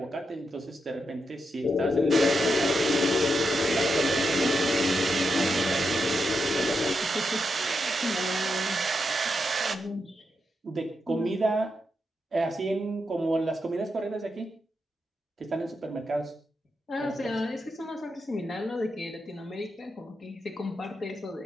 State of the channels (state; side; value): normal; both; correlation 0.84